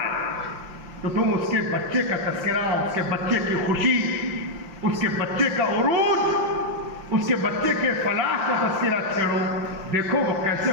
تو تم اس کے بچے کا تذکرہ، اس کے بچے کی خوشی، اس کے بچے کا عروج، اس کے بچے کے فلاح کا تذکرہ چھیڑو۔ دیکھو وہ کیسے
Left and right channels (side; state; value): left; late; 5.8 ms